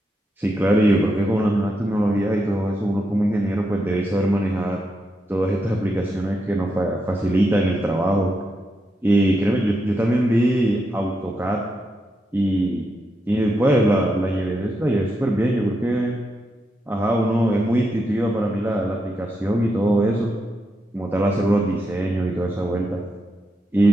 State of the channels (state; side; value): normal; both; correlation 0.83